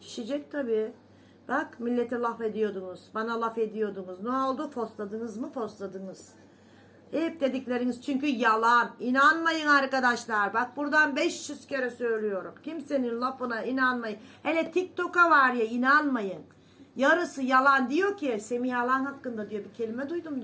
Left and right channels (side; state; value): both; identical; correlation 1.00